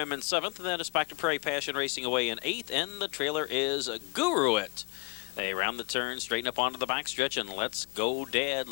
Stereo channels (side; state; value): right; quieter; 33.0 dB